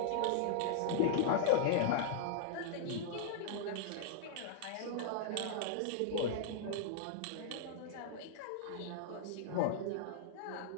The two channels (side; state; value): both; different; correlation -0.01